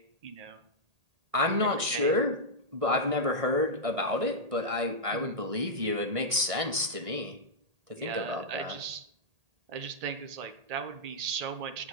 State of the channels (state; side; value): late; left; 1.6 ms